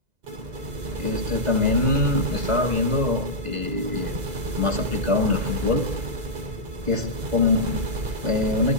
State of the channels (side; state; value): left; late; 2.0 ms